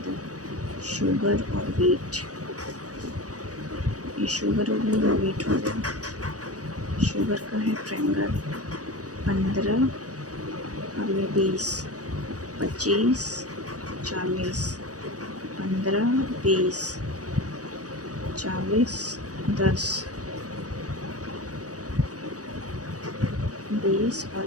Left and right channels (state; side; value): late; left; 0.67 ms